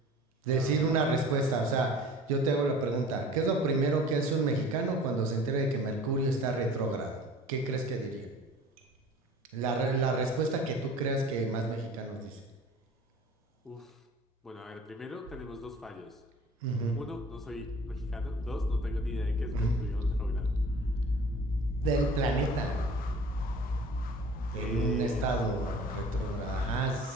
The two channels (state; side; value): normal; both; correlation 0.45